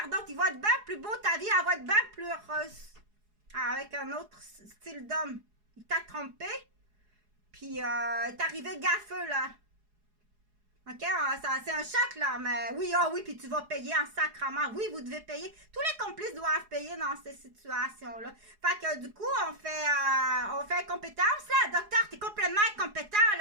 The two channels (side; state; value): left; late; 4.8 ms